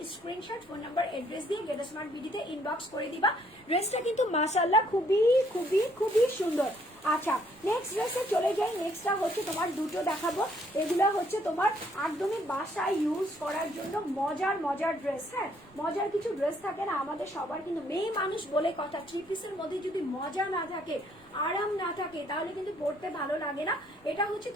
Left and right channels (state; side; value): noise; right; rumble, 28 dB below the sound